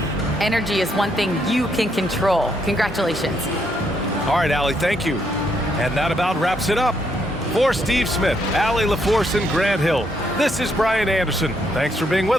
Energy is one thing you can control. Congratulations. All right, Allie, thank you. And that about wraps it up. For Steve Smith, Allie LaForce, and Grant Hill, this is Brian Anderson. Thanks for being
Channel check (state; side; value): normal; both; correlation 0.75